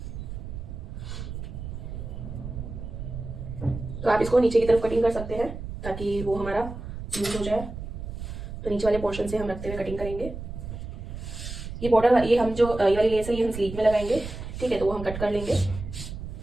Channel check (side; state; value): right; noise; rumble, 8 dB below the sound